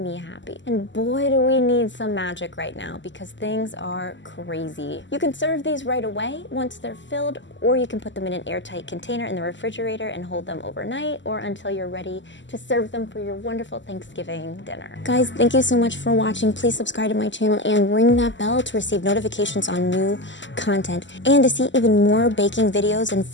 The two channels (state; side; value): late; right; 0.54 ms